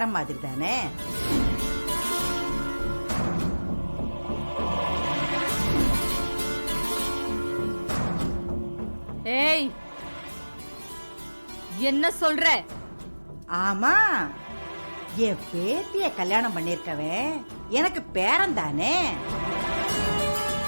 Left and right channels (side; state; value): both; inverted; correlation -1.00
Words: மாதிரி தானே. ஏய், என்ன சொல்ற? ஆமா, என் பேத்திய கல்யாணம் பண்ணிருக்கவன் எனக்கு பேரன் தானே.